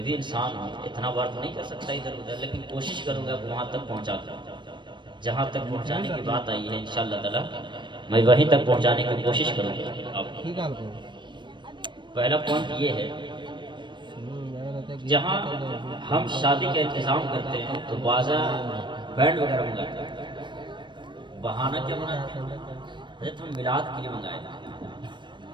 بھی انسان ہوں، اتنا بار تو نہیں کر سکتا ادھر ادھر، لیکن کوشش کروں گا وہاں تک پہنچا دوں جہاں تک پہنچانے کی بات آئی ہے. انشاءاللہ تعالی میں وہیں تک پہنچانے کی کوشش کروں گا. پہلا پوائنٹ یہ ہے، جہاں ہم شادی کا انتظام کرتے ہیں تو بازار بینڈ وغیرہ منگاتے ہیں. بہانہ کیا بناتے ہیں؟ حضرت ہم میلاد کے لیے منگائے تھے،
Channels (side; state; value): left; late; 0.22 ms